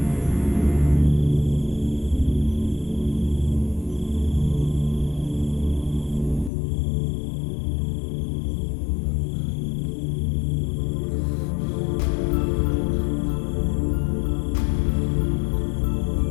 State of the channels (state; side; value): drops out; right; at 6.5 s